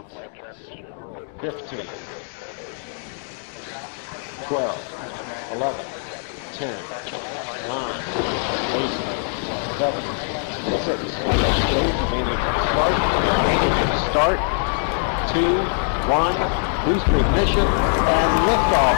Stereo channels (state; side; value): silent; right; 58 dB below the other